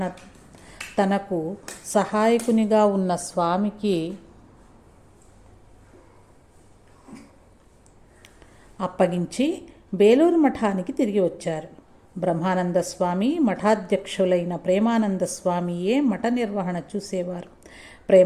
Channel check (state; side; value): identical; both; correlation 1.00